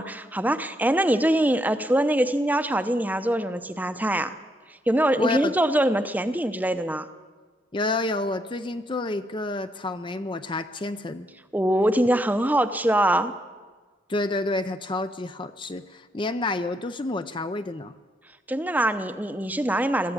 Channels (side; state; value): both; normal; correlation 0.76